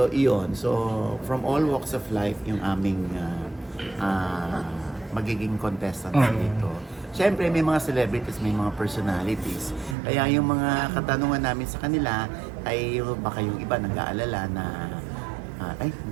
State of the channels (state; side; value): drops out; left; at 10.0 s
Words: iyon. So from all walks of life, yung aming magiging contestants dito. Siyempre, may mga celebrities, may mga personalities. Kaya yung mga katanungan namin sa kanila ay baka yung iba nag-aalala na